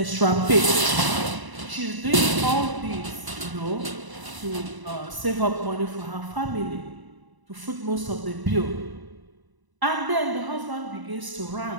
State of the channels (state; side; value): late; left; 1.0 ms